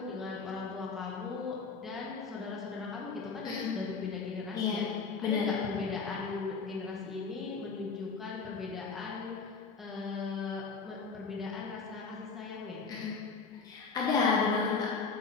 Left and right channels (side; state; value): right; quieter; 4.9 dB